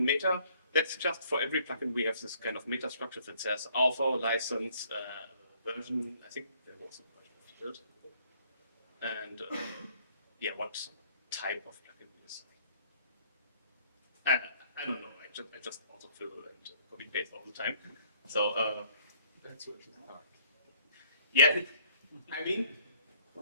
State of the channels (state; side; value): inverted; both; correlation -0.59